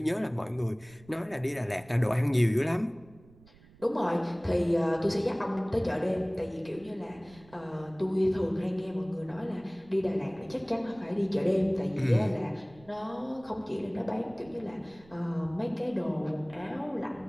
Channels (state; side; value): noise; right; rumble, 25 dB below the sound